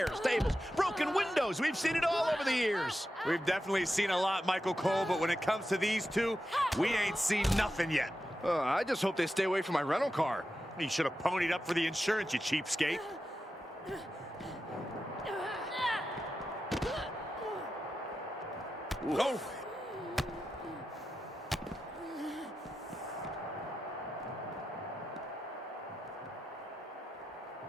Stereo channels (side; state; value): both; normal; correlation 0.90